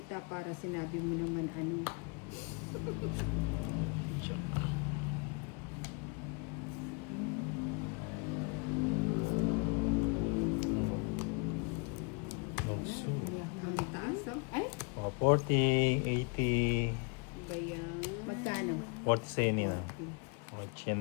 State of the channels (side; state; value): right; quieter; 34.0 dB